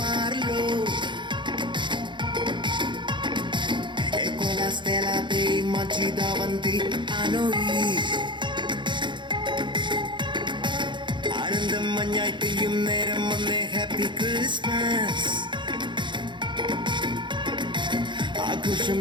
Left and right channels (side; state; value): left; late; 0.23 ms